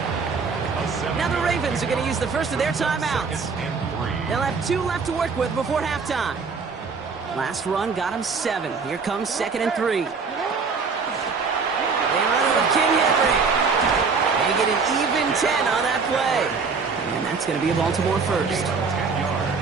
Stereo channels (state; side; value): quieter; left; 5.0 dB